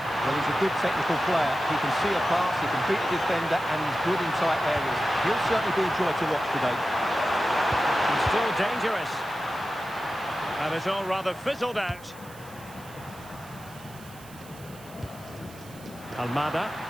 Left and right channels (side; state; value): right; noise; hiss, 21 dB below the sound